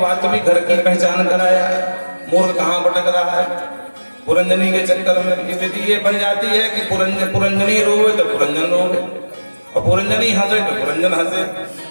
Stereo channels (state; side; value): inverted; both; correlation -1.00